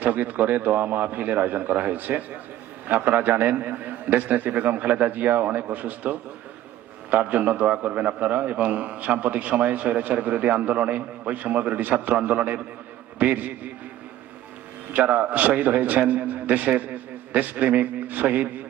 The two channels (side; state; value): left; quieter; 13.3 dB